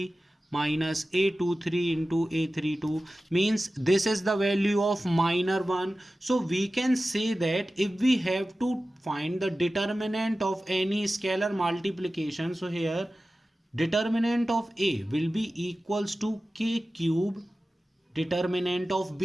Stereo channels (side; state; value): both; normal; correlation 0.95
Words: minus a23 into a32, means this is the value of minor 1. So we can say that if we have to find the determinant of any scalar multiplication, so here determinant of A will be equals to k cube determinant of